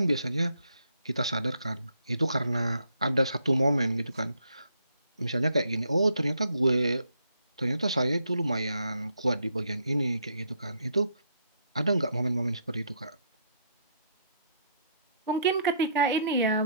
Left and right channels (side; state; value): both; inverted; correlation -0.71